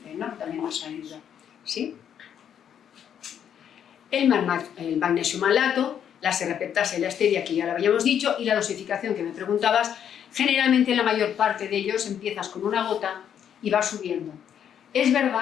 ¿no? También nos ayuda, ¿sí? El magnesio malato, la serrapeptasa y la stevia, que ya lo habíamos dicho, y la dosificación que me preguntabas, generalmente la mayor parte de ellos empiezas con una gota y vas subiendo. Es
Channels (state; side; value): quieter; right; 9.0 dB